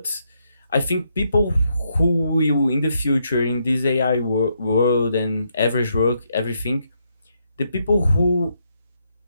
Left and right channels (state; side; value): inverted; both; correlation -0.78